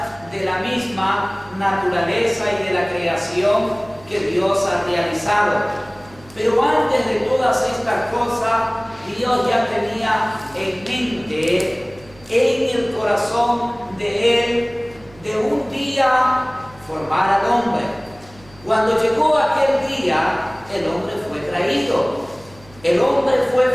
de la misma naturaleza y de la creación que Dios ha realizado. Pero antes de todas estas cosas, Dios ya tenía en mente, en el corazón de Él, de un día formar al hombre. Cuando llegó aquel día, el hombre fue traído. El hombre fue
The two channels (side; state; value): right; noise; hum, 24 dB below the sound